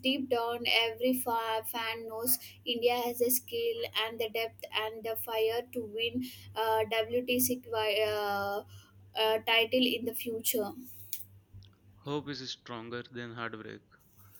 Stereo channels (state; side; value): identical; both; correlation 1.00